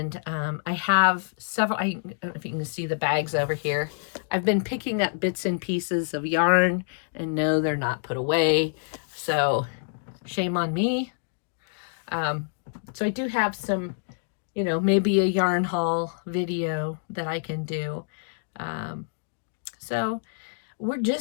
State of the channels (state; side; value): silent; right; digital silence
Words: I have several, I don't know if you can see the bags over here. I've been picking up bits and pieces of yarn, and no, they're not put away. So shame on me. So I do have some, you know, maybe a yarn haul video that I can do. So